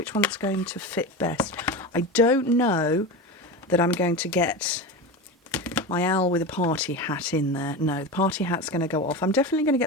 one's going to fit best. I don't know that I'm going to get my owl with a party hat in there. No, the party hat's going to go off. I'm definitely going to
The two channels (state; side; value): normal; both; correlation 0.24